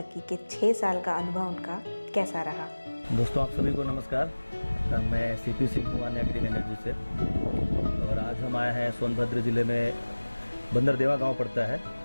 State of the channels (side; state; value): both; inverted; correlation -1.00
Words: के 6 साल का अनुभव उनका कैसा रहा। दोस्तों, आप सभी को नमस्कार। मैं CP सिंह हूँ आन्या ग्रीन एनर्जी से, और आज हम आए हैं सोनभद्र ज़िले में बंदरदेवा गांव पड़ता है।